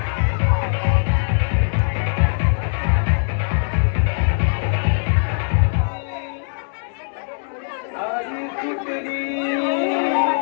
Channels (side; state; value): right; silent; 65 dB below the other